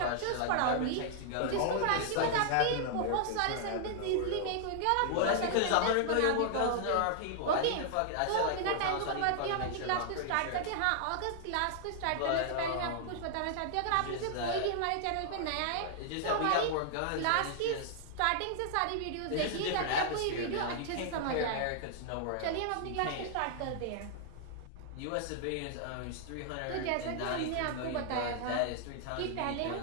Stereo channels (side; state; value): both; different; correlation -0.01